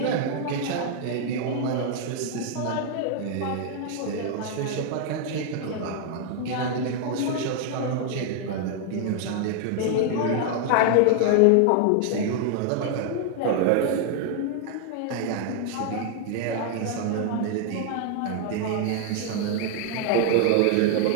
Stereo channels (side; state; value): both; different; correlation 0.00